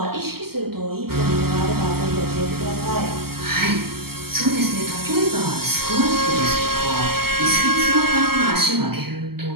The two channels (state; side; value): late; left; 0.95 ms